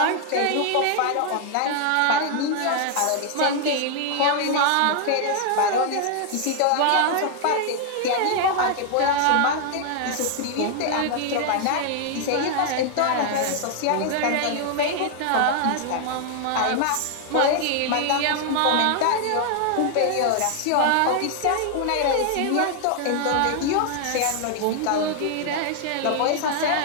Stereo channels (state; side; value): different; both; correlation 0.00